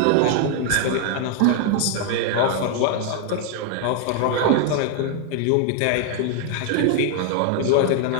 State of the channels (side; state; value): both; different; correlation 0.00